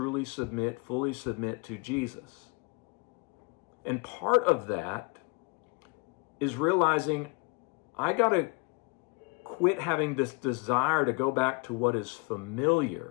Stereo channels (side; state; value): right; quieter; 29.6 dB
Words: submit, fully submit to Jesus. And part of that is realizing I got to quit having this desire to go back to what is